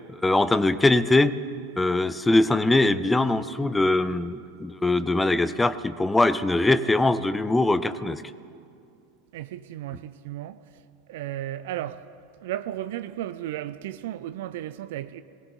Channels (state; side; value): normal; both; correlation 0.87